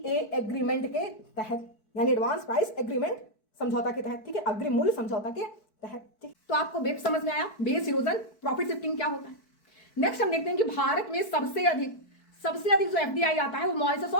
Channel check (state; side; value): late; right; 4.6 ms